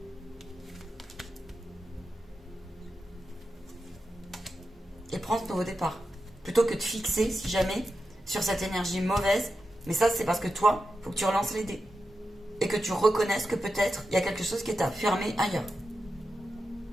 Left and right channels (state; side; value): normal; both; correlation 0.90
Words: Et prends ce nouveau départ. Plutôt que de fixer, si jamais, sur cette énergie mauvaise. Mais ça, c'est parce que toi, il faut que tu relances les dés. Et que tu reconnaisses que peut-être, il y a quelque chose qui t'a fermé ailleurs.